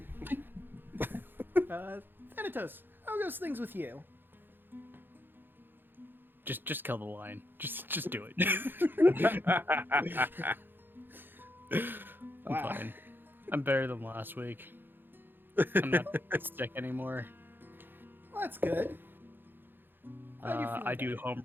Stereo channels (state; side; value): late; left; 0.097 ms